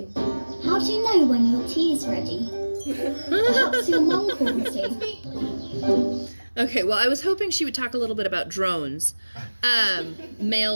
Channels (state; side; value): inverted; both; correlation -1.00